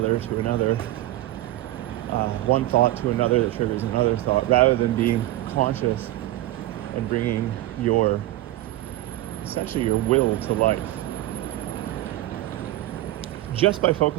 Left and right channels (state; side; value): quieter; left; 15.8 dB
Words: one thought to another that triggers another thought, rather than being conscious and bringing essentially your will to life just by